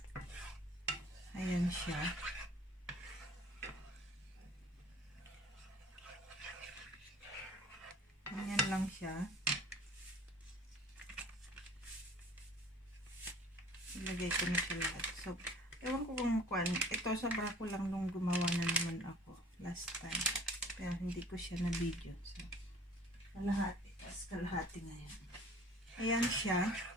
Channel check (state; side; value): normal; both; correlation 0.49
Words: ayan siya. Ganyan lang siya. Ilagay ko na siya lahat. So, ewan ko kung ito sobra ko lang nung gumawa na naman ako last time. Pero hindi ko siya na video. So, kalahati. Tapos kalahati ngayon. Ayan siya.